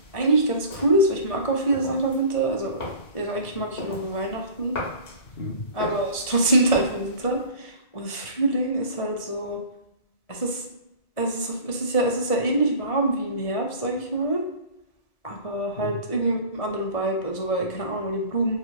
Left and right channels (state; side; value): late; right; 1.7 ms